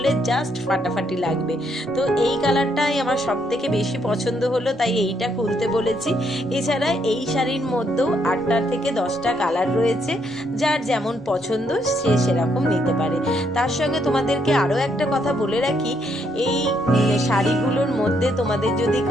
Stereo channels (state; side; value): normal; both; correlation 0.73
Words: জাস্ট ফাটাফাটি লাগবে। তো এই কালারটাই আমার সব থেকে বেশি পছন্দ হলো, তাই এইটা খুলতে বলেছি। এছাড়া এই শাড়ির মধ্যেও 8টা থেকে 10টা কালার রয়েছে, যার যেমন পছন্দ সে সেরকম নিতে পারে। তার সঙ্গে তোমাদেরকে আরও একটা কথা বলে রাখি, এই শাড়িগুলোর মধ্যে তোমাদের যদি